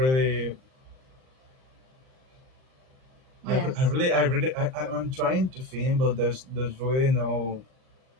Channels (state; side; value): late; left; 38 ms